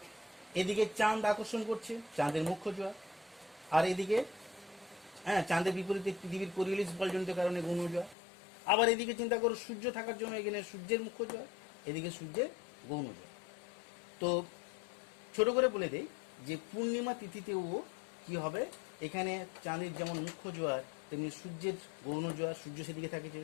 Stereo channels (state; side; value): drops out; right; at 8.2 s